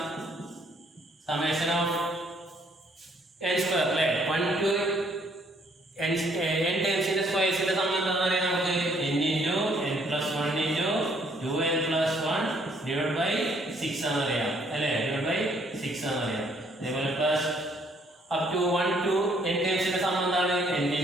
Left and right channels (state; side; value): normal; both; correlation 0.66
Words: സമേഷൻ ഓഫ് n സ്ക്വയർ അല്ലേ. 1 to n ടേംസിന്റെ സ്ക്വയർസിന്റെ സം എന്താണെന്ന് അറിയാം നമുക്ക്. n into n plus 1 into 2n plus 1 divide by 6 ആണെന്ന് അറിയാം അല്ലേ. ഡിവൈഡ് ബൈ 6 ആണെന്ന് അറിയാം. അതേപോലെ plus up to 1 to n ടേംസിന്റെ സം എന്താണ്? n